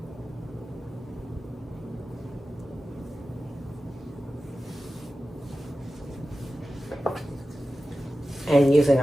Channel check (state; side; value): normal; both; correlation 0.94